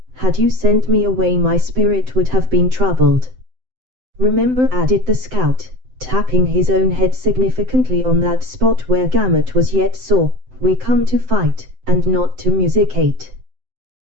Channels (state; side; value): late; left; 7.8 ms